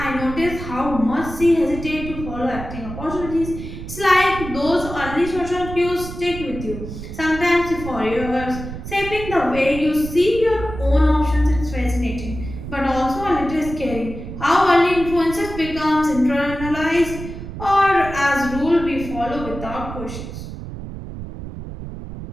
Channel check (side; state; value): right; noise; rumble, 10 dB below the sound